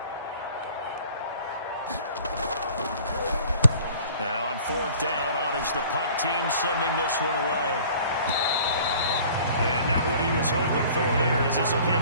Now on 4th down, on is the punt team sending this one away. And not what he was hoping for there, as this will hit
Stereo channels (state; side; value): inverted; both; correlation -0.49